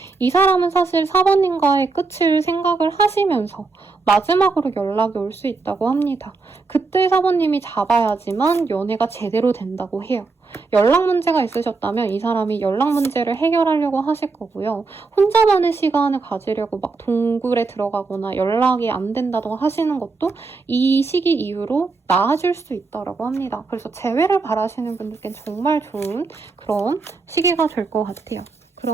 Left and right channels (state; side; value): quieter; left; 4.1 dB